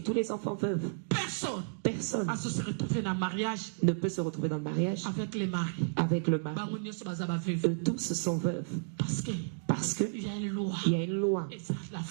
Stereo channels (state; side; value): silent; left; digital silence